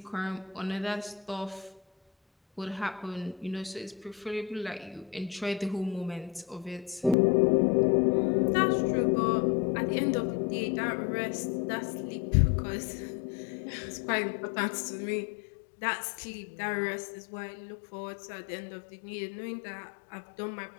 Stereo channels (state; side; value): drops out; right; at 7.2 s